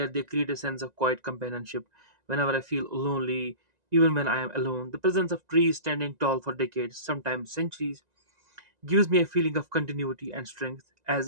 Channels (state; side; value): late; left; 1.9 ms